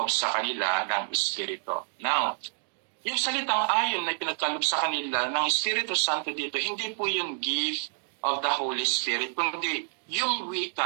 sa kanila ng Espiritu. Now, yung salitang ayon na ipinagkaloob sa kanila ng Espiritu Santo dito, hindi po yung gift of the Holy Spirit, kundi yung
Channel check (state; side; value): silent; left; digital silence